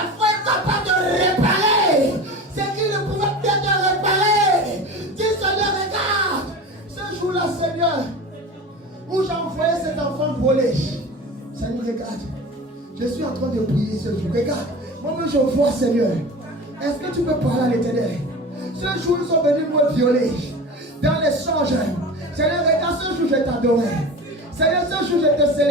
foi est capable de réparer ce qui ne pouvait pas être réparé. Dis, Seigneur, regarde ce jour-là, Seigneur, où j'ai envoyé cet enfant voler. Seigneur, regarde. Je suis en train de prier ce jour. Regarde, moi-même je vois, Seigneur. Est-ce que tu peux parler à l'Éternel? Ce jour, ils sont venus me violer. Dans l'échange. Seigneur, regarde, ce jour, je t'adorais. Seigneur, ce jour, je te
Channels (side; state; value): both; normal; correlation 0.33